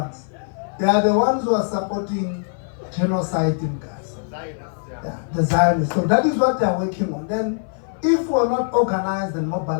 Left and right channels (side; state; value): right; silent; 57 dB below the other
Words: They are the ones who are supporting genocide in Gaza. Yeah, the Zionists. So that is what they are working on. Then, if we are not organized and